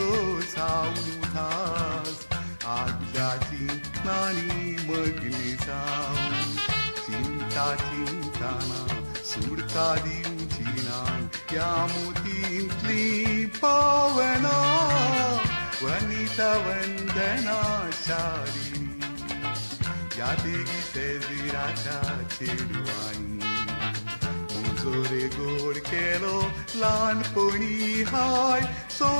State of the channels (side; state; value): both; inverted; correlation -1.00